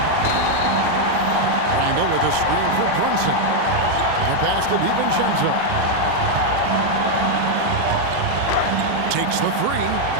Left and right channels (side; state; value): both; different; correlation 0.01